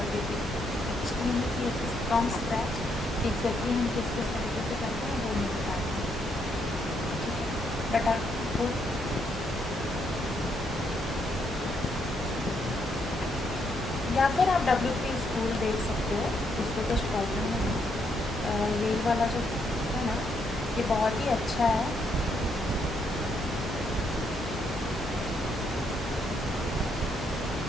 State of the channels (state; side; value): normal; both; correlation 0.75